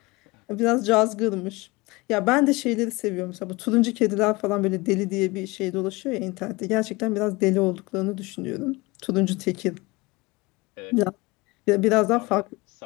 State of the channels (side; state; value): right; quieter; 23.4 dB